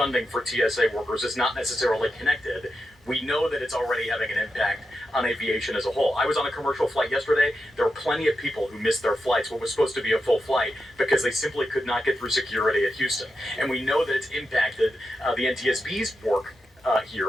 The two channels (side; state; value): both; normal; correlation 0.88